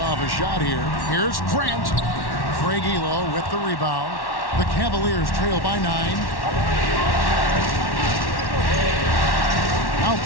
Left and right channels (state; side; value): late; right; 1.1 ms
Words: off a shot here. Here's Grant. Craig Elo with the rebound. The Cavaliers trail by 9. Now